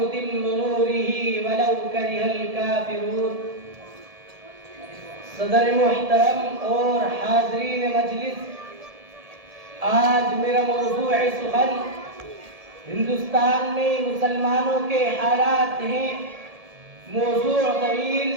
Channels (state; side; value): late; left; 1.7 ms